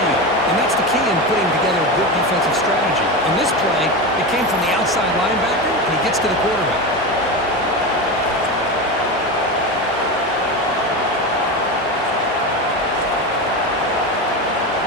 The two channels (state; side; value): normal; both; correlation 0.20